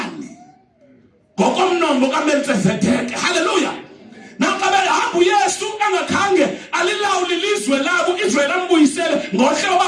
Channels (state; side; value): identical; both; correlation 1.00